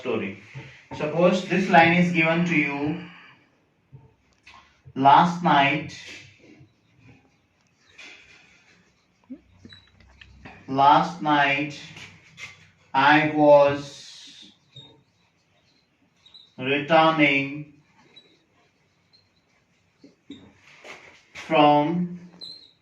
Suppose this line is given to you. Last night I was returning from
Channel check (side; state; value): both; identical; correlation 1.00